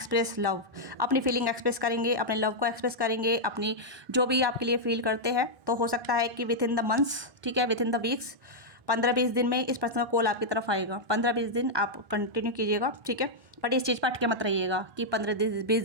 लव, अपनी फीलिंग एक्सप्रेस करेंगे, अपने लव को एक्सप्रेस करेंगे, अपनी जो भी आपके लिए फील करते हैं। तो हो सकता है कि विद इन द मंथ्स, ठीक है, विद इन द वीक्स, 15-20 दिन में इस पर्सन का कॉल आपकी तरफ आएगा। 15-20 दिन आप कंटिन्यू कीजिएगा। ठीक है, बट इस चीज़ पर अटके मत रहिएगा कि 15-20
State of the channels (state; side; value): late; left; 1.2 ms